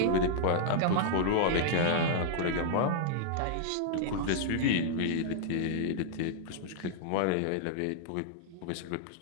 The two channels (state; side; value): different; both; correlation -0.01